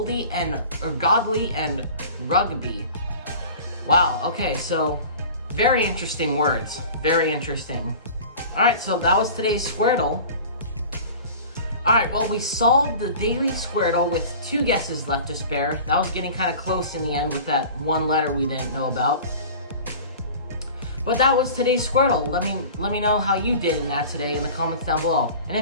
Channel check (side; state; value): both; inverted; correlation -0.40